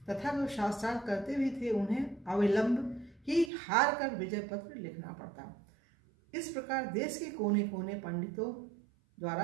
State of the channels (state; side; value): drops out; left; at 3.5 s